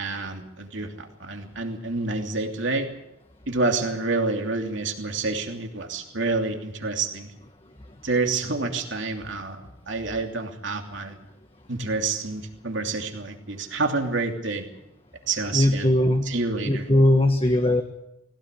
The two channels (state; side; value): normal; both; correlation 0.47